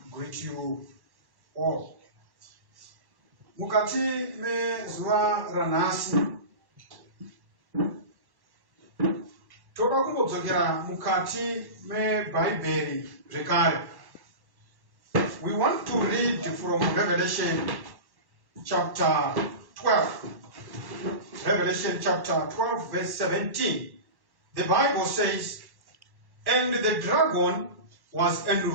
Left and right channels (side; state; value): left; late; 1.1 ms